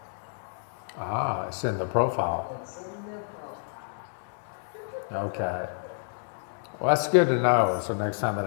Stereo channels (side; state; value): right; silent; digital silence